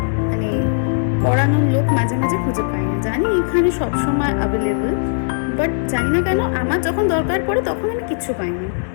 মানে পড়ানোর লোক মাঝে মাঝে খুঁজে পাই না। জানি এখানে সবসময় অ্যাভেলেবল, বাট জানি না কেন আমার যখন দরকার পড়ে তখন আমি কিচ্ছু পাইনি।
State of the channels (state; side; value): silent; right; digital silence